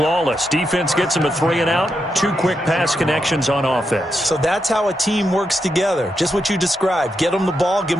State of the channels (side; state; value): both; normal; correlation 0.84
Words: Defense gets them a 3 and out. 2 quick pass connections on offense. So that's how a team works together. Just what you described. Get them the ball, give